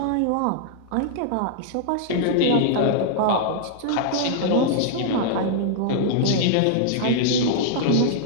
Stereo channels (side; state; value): both; different; correlation -0.01